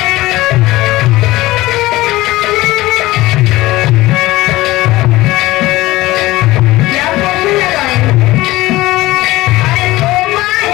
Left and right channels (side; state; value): right; quieter; 18.4 dB